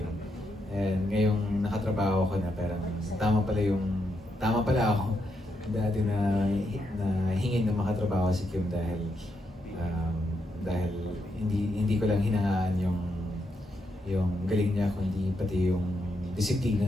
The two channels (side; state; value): both; normal; correlation 0.81